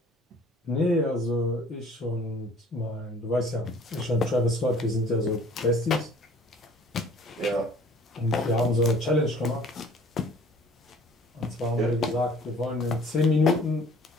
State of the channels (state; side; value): normal; both; correlation 0.52